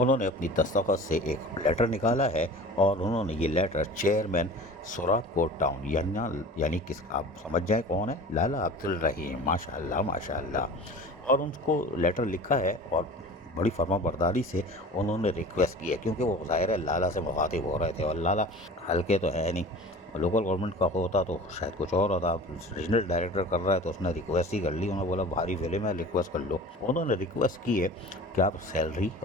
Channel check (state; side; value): normal; both; correlation 0.39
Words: अपनी दस्तखत से एक लेटर निकाला है और उन्होंने ये लेटर चेयरमैन सोराबकोट टाउन यानी किस आप समझ जाए कौन है, लाला अब्दुल रहीम, माशाअल्लाह माशाअल्लाह, और उनको लेटर लिखा है और बड़ी फर्माबरदारी से उन्होंने रिक्वेस्ट की है, क्योंकि वो ज़ाहिर है लाला से मुखातिब हो रहे थे और लाला हल्के तो है नहीं, लोकल गवर्नमेंट का होता तो शायद कुछ और होता। रीजनल डायरेक्टर कर रहा है तो उसने रिक्वेस्ट ही कर ली, उन्होंने बोला भारी फिल्म है रिक्वेस्ट कर लो। उन्होंने रिक्वेस्ट की है कि आप सैलरी